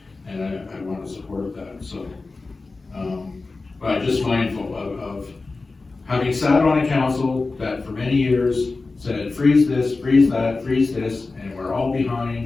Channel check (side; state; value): right; quieter; 3.7 dB